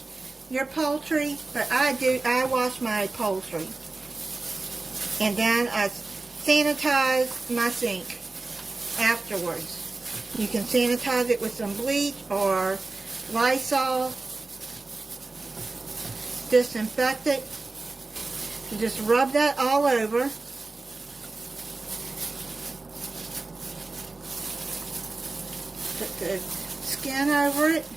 your poultry, but I do. I wash my poultry. And then I sanitize my sink afterwards. You can sanitize it with some bleach or Lysol. Disinfect it. You just rub that all over. Put the skin over it.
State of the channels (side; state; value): left; quieter; 3.5 dB